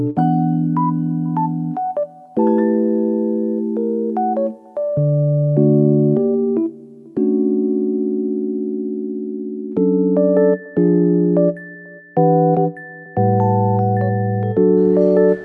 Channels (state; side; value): identical; both; correlation 1.00